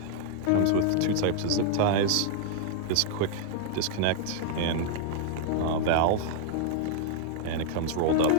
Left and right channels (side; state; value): both; different; correlation 0.00